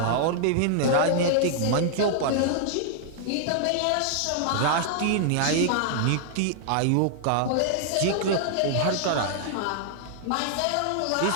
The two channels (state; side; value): different; both; correlation -0.01